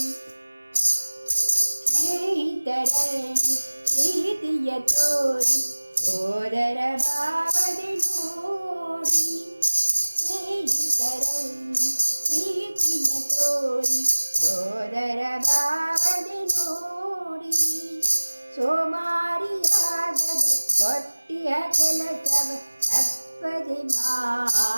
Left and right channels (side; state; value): both; inverted; correlation -1.00